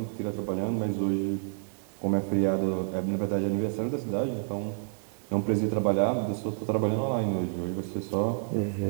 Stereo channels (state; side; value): silent; left; digital silence